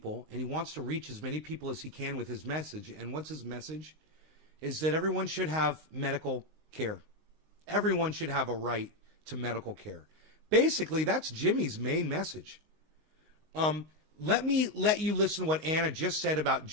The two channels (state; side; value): late; left; 19 ms